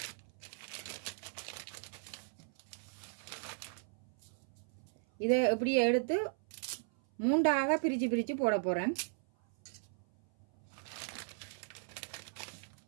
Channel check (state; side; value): silent; left; 53 dB below the other